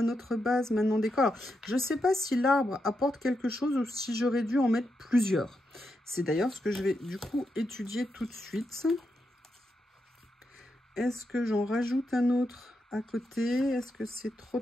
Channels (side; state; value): both; normal; correlation 0.85